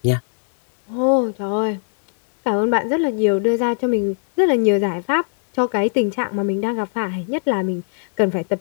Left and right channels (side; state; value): right; silent; digital silence